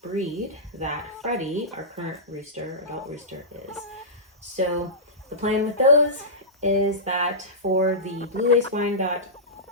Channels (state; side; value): normal; both; correlation -0.17